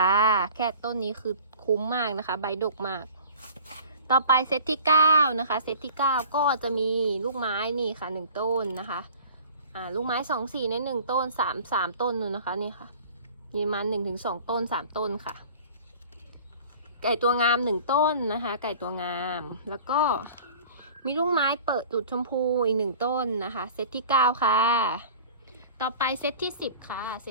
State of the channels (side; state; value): both; inverted; correlation -0.44